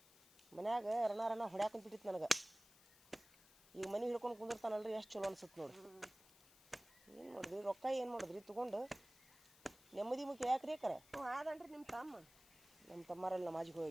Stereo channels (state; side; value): noise; left; hiss, 24 dB below the sound